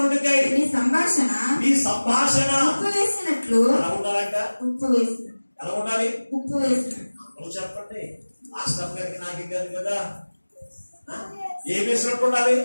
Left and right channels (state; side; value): inverted; both; correlation -1.00